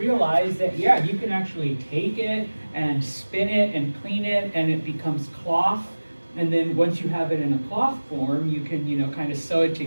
that, yeah, you can actually take it and spin it and clean it, and it becomes cloth. And then once you have it in a cloth form, you can, kind of sew it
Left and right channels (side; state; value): both; inverted; correlation -1.00